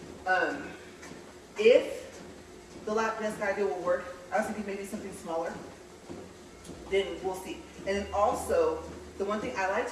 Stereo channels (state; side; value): identical; both; correlation 1.00